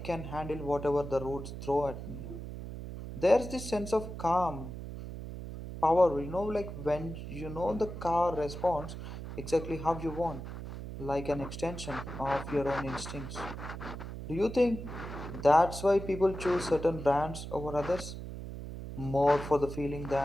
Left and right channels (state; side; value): noise; right; hum, 9 dB below the sound